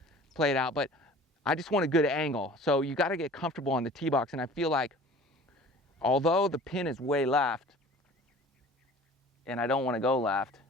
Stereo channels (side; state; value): both; normal; correlation 0.45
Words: play it out, but I just want a good angle. So you got to get comfortable on the tee box. And I feel like, although the pin is way left, and I don't want to go left,